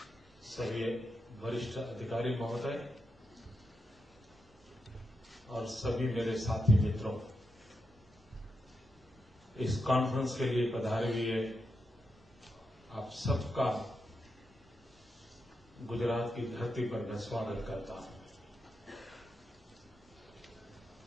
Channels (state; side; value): normal; both; correlation 0.86